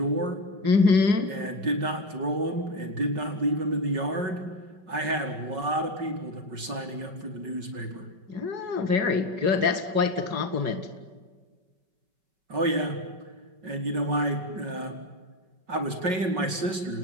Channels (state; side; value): late; left; 5.3 ms